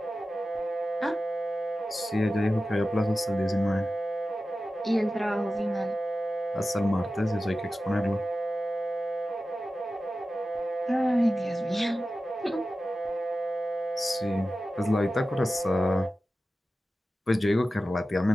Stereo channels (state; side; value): normal; both; correlation 0.93